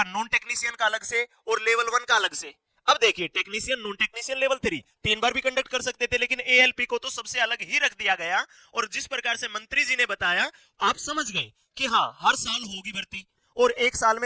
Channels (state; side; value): identical; both; correlation 1.00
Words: नॉन टेक्नीशियन का अलग से और लेवल 1 का अलग से। अब देखिए, टेक्नीशियन, नॉन टेक्नीशियन, लेवल 3 3 बार भी कंडक्ट कर सकते थे, लेकिन एएलपी को तो सबसे अलग ही रख दिया गया। और जिस प्रकार से मंत्री जी ने बताया, आप समझ गए कि हाँ हर साल होगी भर्ती और एक साल